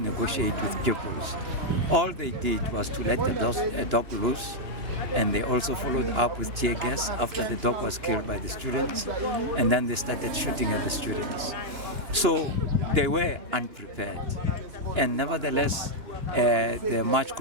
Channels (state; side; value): late; left; 2.9 ms